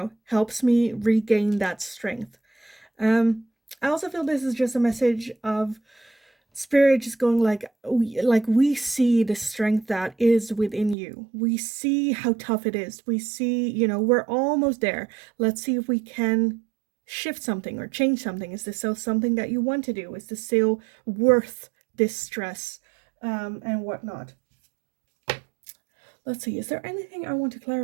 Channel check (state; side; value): drops out; left; at 11.0 s